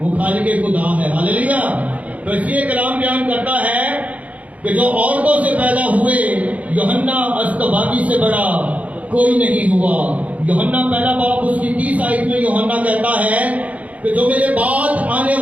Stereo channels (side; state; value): left; late; 0.069 ms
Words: خالق خدا ہے. ہاللیلویا. تو اس لیے کلام بیان کرتا ہے کہ جو عورتوں سے پیدا ہوئے یوحنا اصطباغی سے بڑا کوئی نہیں ہوا. یوحنا پہلا باب اس کی 30 آیت میں یوحنا کہتا ہے کہ جو میرے بعد آنے